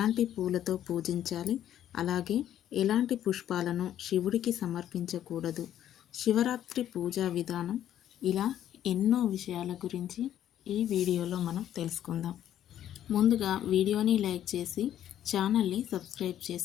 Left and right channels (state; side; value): quieter; right; 11.2 dB